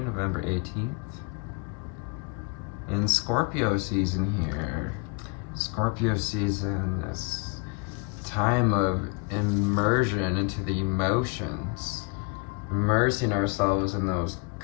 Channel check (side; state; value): right; quieter; 31.4 dB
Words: 18th. And Scorpio season here. Scorpio season, this time of immersion into the emotions. Immersing ourselves in those